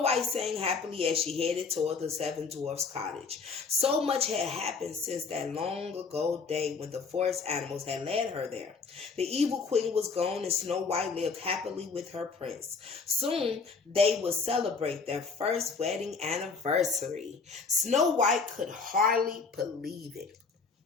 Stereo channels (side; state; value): right; quieter; 4.8 dB